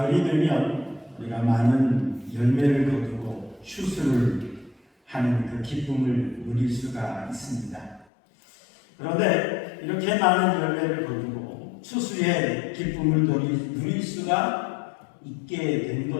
되면 우리가 많은 열매를 거두고 추수를 하는 그 기쁨을 누릴 수가 있습니다. 그런데 이렇게 많은 열매를 거두고 추수의 기쁨을 누릴 수가 있게 된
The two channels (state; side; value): drops out; right; at 8.1 s